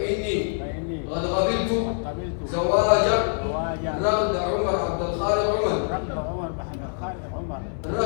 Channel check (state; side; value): silent; right; 62 dB below the other